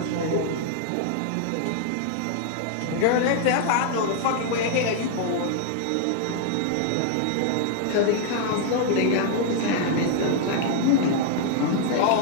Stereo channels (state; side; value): different; both; correlation 0.00